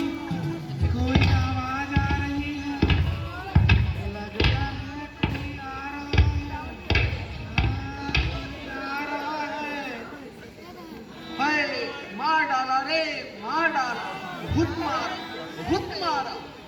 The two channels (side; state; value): both; identical; correlation 1.00